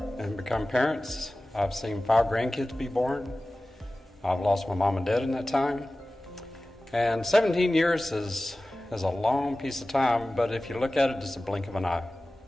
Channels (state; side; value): normal; both; correlation 0.97